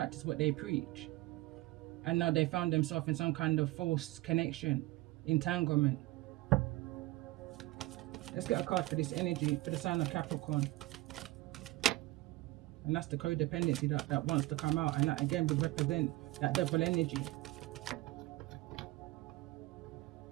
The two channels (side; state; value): left; quieter; 19.1 dB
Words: what they preach. And now they found themselves in some kind of false connection, entanglement. Let's get a card for this energy, for the sign of Capricorn. And that's the codependency that wants to come out. And that again would represent that devil energy.